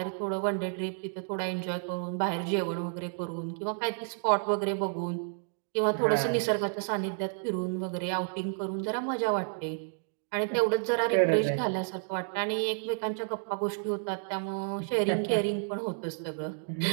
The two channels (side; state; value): left; silent; 57 dB below the other